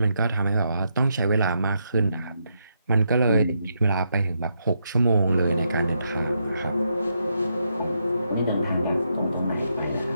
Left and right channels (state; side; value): inverted; both; correlation -0.80